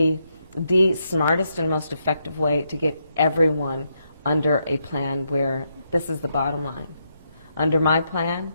the smartest and most effective way to get everyone under a plan where this is the bottom line. Under my plan,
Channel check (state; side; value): inverted; both; correlation -0.79